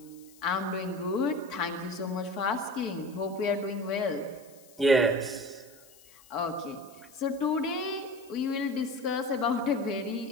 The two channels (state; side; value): noise; left; hiss, 24 dB below the sound